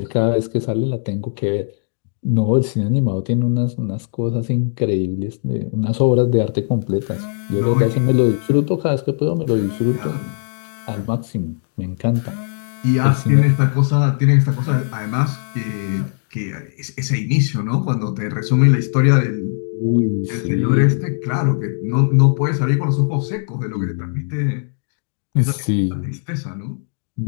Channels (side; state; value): right; silent; digital silence